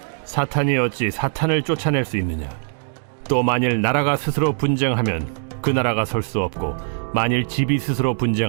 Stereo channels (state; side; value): silent; left; digital silence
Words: 사탄이 어찌 사탄을 쫓아낼 수 있느냐? 또 만일 나라가 스스로 분쟁하면 그 나라가 설 수 없고 만일 집이 스스로